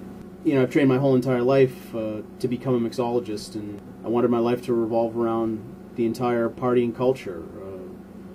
You know, I've trained my whole entire life to become a mixologist, and I wanted my life to revolve around the entire partying culture,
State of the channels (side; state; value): both; identical; correlation 1.00